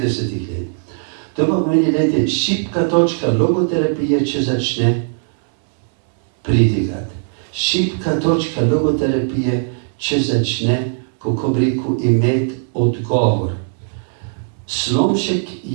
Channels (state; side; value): silent; left; 63 dB below the other